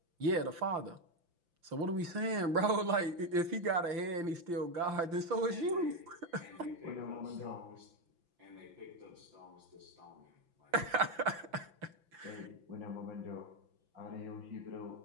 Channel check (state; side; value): late; left; 5.9 ms